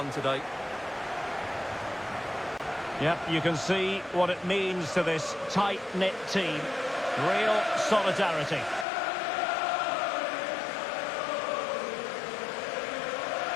today. Yep, you can see what it means to this tight-knit team. Real solidarity.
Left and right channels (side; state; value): right; drops out; at 8.8 s